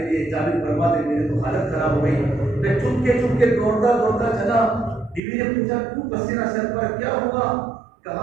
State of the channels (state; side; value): drops out; left; at 5.2 s